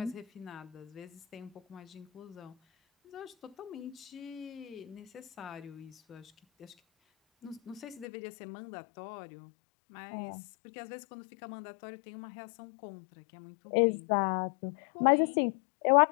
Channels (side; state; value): right; drops out; at 8.1 s